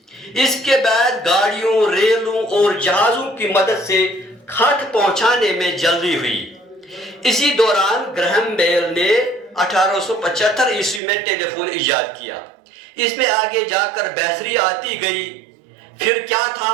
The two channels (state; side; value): drops out; left; at 11.0 s